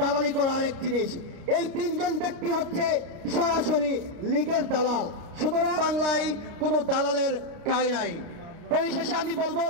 করা আরেক জিনিস। এই তিনজন ব্যক্তি হচ্ছে সরাসরি লীগের দালাল। সুতরাং বাংলায় কোনো দালালের ঠাঁই নাই। পরিশেষে আমি বলবো,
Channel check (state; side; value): late; left; 29 ms